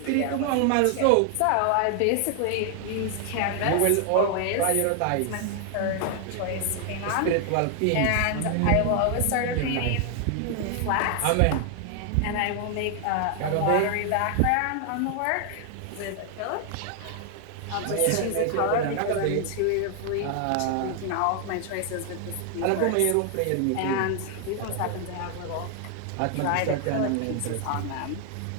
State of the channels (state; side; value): different; both; correlation 0.00